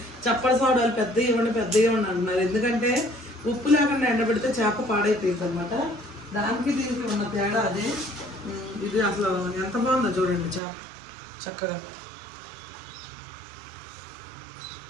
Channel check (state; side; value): drops out; left; at 10.6 s